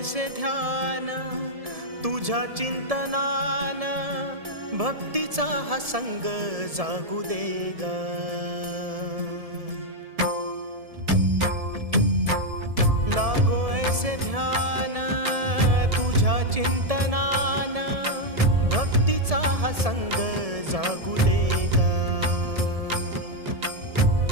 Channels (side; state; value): left; late; 1.7 ms